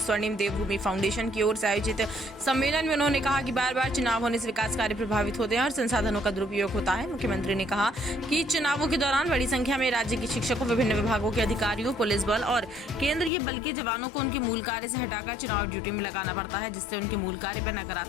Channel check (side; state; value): right; drops out; at 13.3 s